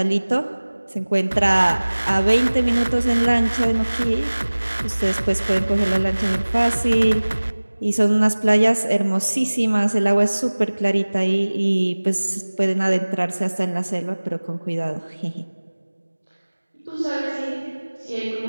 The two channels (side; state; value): both; inverted; correlation -1.00